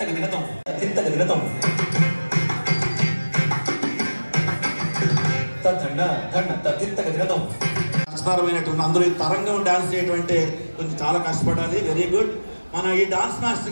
దినతం దండ దండ తిత్తగ దినతం. కష్టతరమైనటువంటి అందులో ఈ తరంగం డాన్స్ చేయటువంటి కొంచెం చాలా కష్టపడాలి. Very good. మన ఈ డాన్స్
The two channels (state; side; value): inverted; both; correlation -1.00